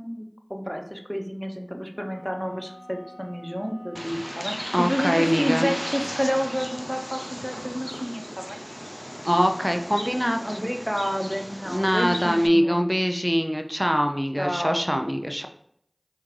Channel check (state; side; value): identical; both; correlation 1.00